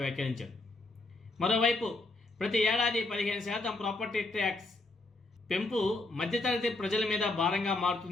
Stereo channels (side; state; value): right; quieter; 3.1 dB